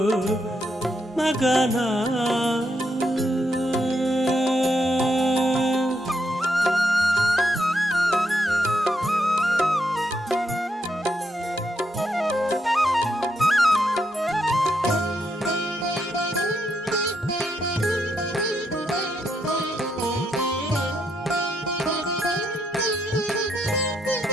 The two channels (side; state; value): both; normal; correlation 0.79